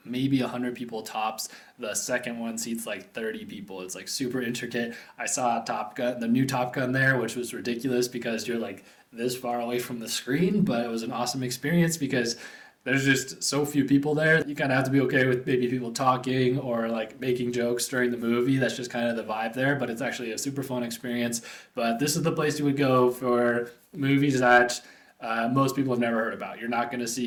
maybe 100 people tops. The second one seats like 30 people. It's like super intricate. I saw Top Gun, the new Top Gun there, which was ridiculous because you're like this far away from the screen, but it was an awesome experience because there's just so few people there. You kind of have to be okay with maybe people talking or like making jokes during the movie. That's just kind of the vibe there, but it's actually a super fun experience. But this is the place you would go for movies that most people have never heard about. You're not going to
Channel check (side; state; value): both; identical; correlation 1.00